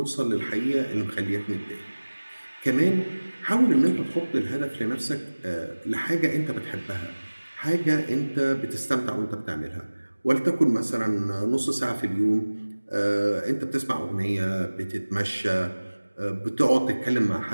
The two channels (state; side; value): inverted; both; correlation -1.00